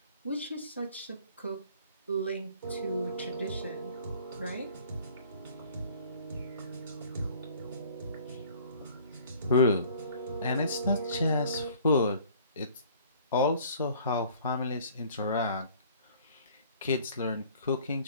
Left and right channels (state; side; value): inverted; both; correlation -0.52